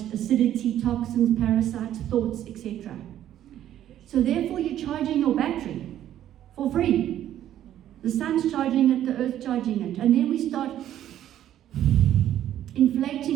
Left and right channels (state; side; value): quieter; left; 11.7 dB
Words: acidity, toxins, parasites, thoughts, etc. So therefore, you're charging your battery for free. The sun's charging it, the earth's charging it. And then we start